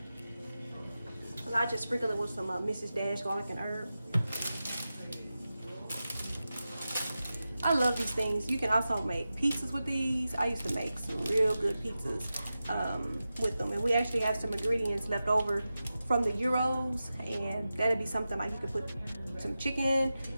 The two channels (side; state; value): both; inverted; correlation -0.93